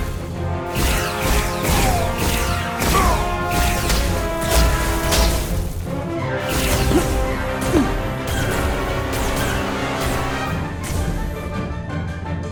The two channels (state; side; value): identical; both; correlation 1.00